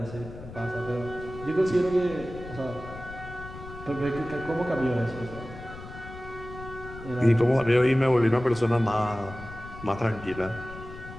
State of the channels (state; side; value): noise; left; rumble, 14 dB below the sound